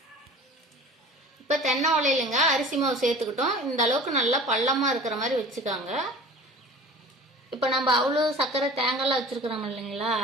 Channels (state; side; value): normal; both; correlation 0.42